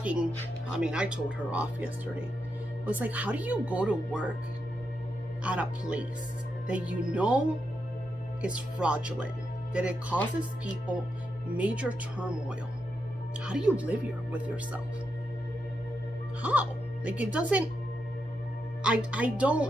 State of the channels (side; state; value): both; normal; correlation 0.84